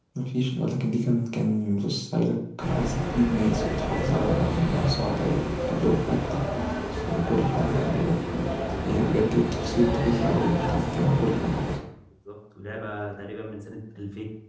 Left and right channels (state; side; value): identical; both; correlation 1.00